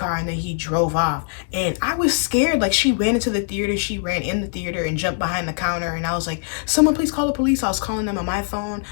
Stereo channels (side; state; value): right; silent; 62 dB below the other